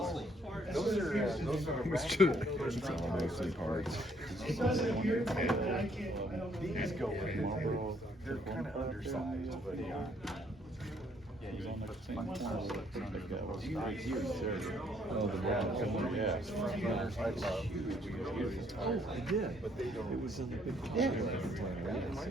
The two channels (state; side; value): normal; both; correlation 0.67